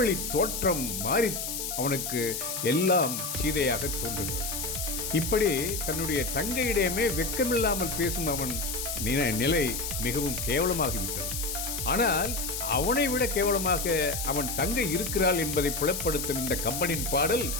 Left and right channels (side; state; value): left; noise; hiss, 4 dB below the sound